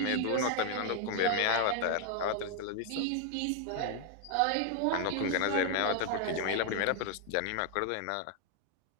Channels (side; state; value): both; different; correlation 0.00